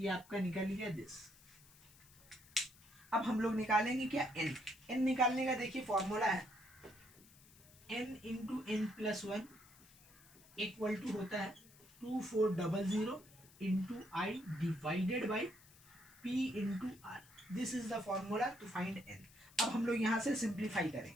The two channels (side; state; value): left; noise; hiss, 24 dB below the sound